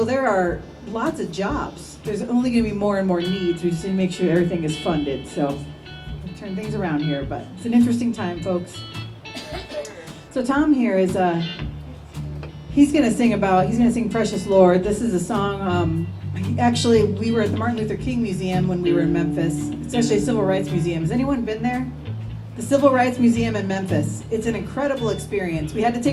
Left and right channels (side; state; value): both; identical; correlation 1.00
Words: there are lots of jobs. There's only gonna be more and more needs. We just need to make sure everything is funded. So we'll turn things around here, but it's an interesting time, folks. So Tom here is, he's gonna sing Precious Lord. This is a song, actually, we were at the Martin Luther King Museum when we were in Memphis. It's actually a civil rights museum. Has anyone been there? The Civil Rights Museum in Memphis. It's an incredible experience. We had to